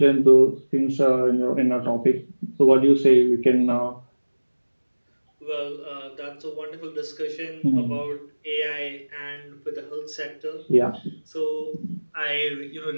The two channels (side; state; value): both; inverted; correlation -1.00